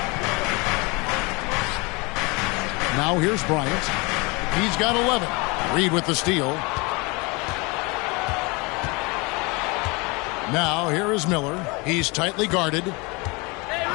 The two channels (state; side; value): quieter; right; 27.3 dB